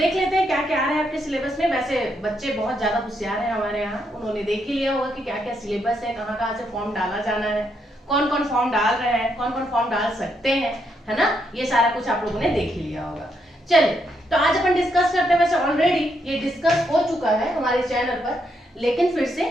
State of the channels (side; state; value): both; normal; correlation 0.78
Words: लेते हैं क्या क्या आ रहा है आपके सिलेबस में। वैसे बच्चे बहुत ज्यादा होशियार हैं हमारे यहाँ, उन्होंने देख ही लिया होगा कि क्या क्या सिलेबस है, कहाँ कहाँ से फॉर्म डाला जाना है, कौन कौन फॉर्म डाल रहे हैं, कौन कौन फॉर्म डाल सकते हैं, है ना? ये सारा कुछ आप लोगों ने देख ही लिया होगा। चलिए, तो आज अपन डिस्कस करते हैं। वैसे ऑलरेडी ये डिस्कस हो चुका है हमारे चैनल पर, लेकिन फिर से